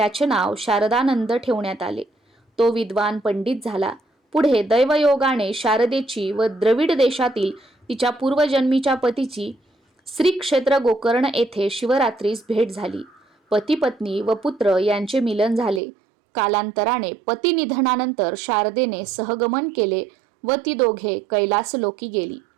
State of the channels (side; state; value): left; drops out; at 15.8 s